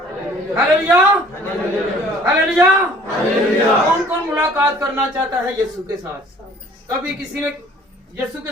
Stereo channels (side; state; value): both; normal; correlation 0.53